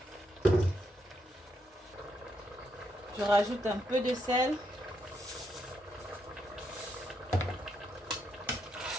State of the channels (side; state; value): both; normal; correlation 0.79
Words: Je rajoute un peu de sel.